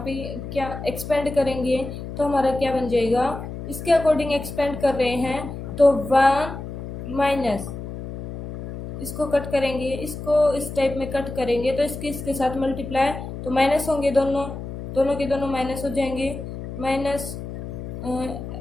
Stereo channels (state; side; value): noise; left; hum, 9 dB below the sound